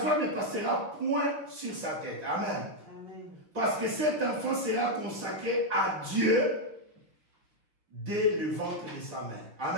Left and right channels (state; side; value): late; left; 5.7 ms